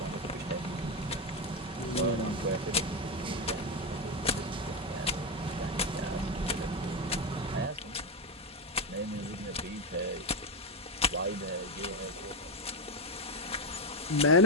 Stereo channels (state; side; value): normal; both; correlation 0.09